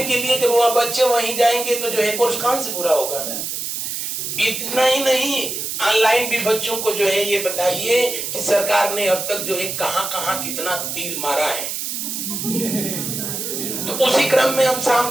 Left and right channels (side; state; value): right; noise; hiss, 4 dB below the sound